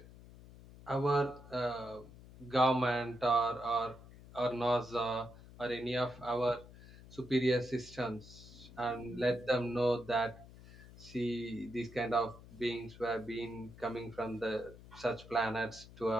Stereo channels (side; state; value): left; noise; hum, 19 dB below the sound